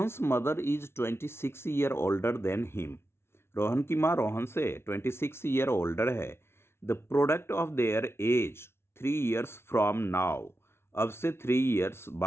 mother is 26 year older than him. Rohan की माँ रोहन से 26 ईयर ओल्डर है। The product of their age 3 years from now. अब से 3 ईयर्स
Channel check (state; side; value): late; right; 0.12 ms